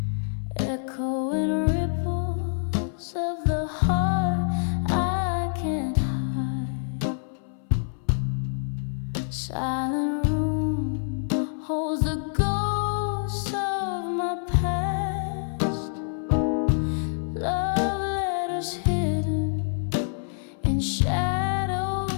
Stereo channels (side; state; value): right; silent; 61 dB below the other